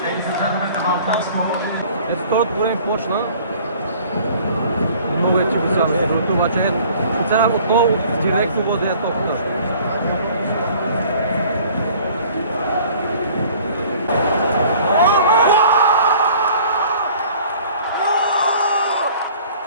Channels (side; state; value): both; inverted; correlation -0.52